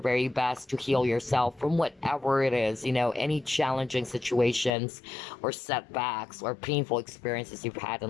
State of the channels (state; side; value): drops out; right; at 4.7 s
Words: best to heal yourself from whatever it is, any challenging situations or setbacks or painful experiences you've had